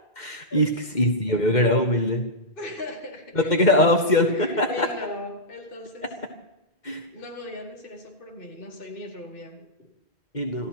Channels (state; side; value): late; right; 2.1 ms